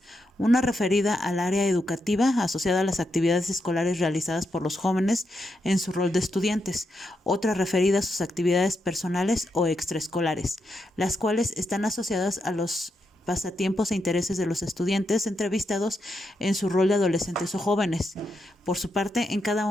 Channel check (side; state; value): both; normal; correlation 0.83